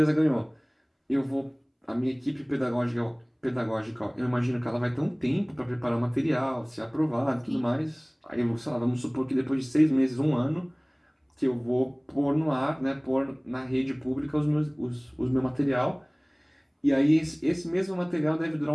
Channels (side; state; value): both; identical; correlation 1.00